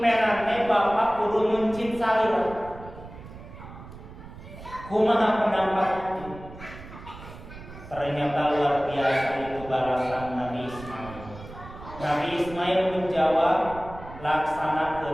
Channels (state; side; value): noise; right; rumble, 15 dB below the sound